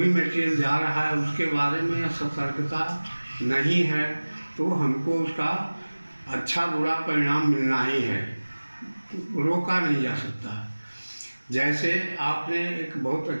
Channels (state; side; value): inverted; both; correlation -1.00